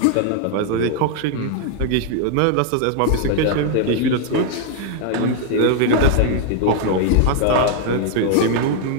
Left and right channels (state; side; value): different; both; correlation 0.00